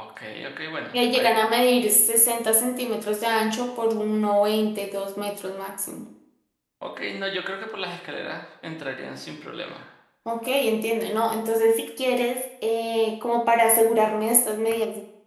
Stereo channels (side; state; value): both; identical; correlation 1.00